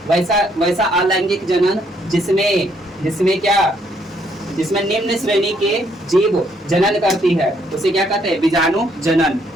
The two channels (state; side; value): normal; both; correlation 0.70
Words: वैसा अलैंगिक जनन जिसमें क्या, जिसमें निम्न श्रेणी के जीव जनन करती है, उसे क्या कहते हैं? बीजाणु जनन।